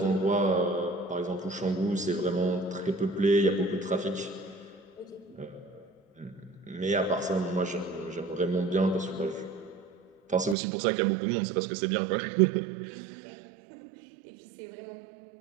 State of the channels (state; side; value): drops out; left; at 10.6 s